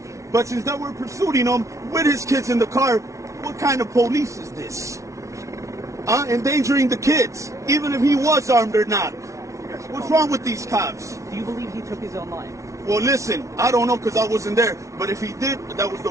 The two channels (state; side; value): late; left; 0.15 ms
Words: but since they were pursuing him with his kids in the car, what kind of police is this? Endangering the kids, even if he was armed or not. What's wrong with these cops? Do you believe he took his own life? Well, listen, I don't know because I wasn't there, but if he did, that was the